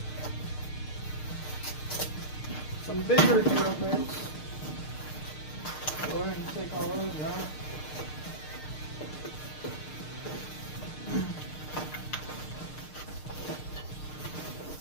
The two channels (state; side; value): late; right; 6.6 ms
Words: some bigger drill bits. Go ahead and take all those out.